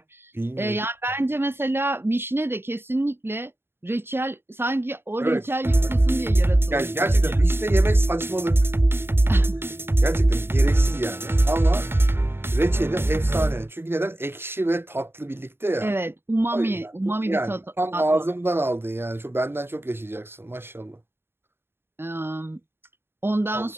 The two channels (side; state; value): left; late; 0.11 ms